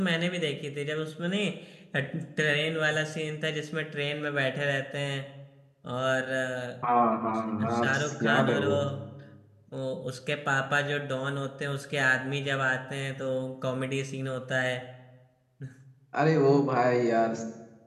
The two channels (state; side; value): identical; both; correlation 1.00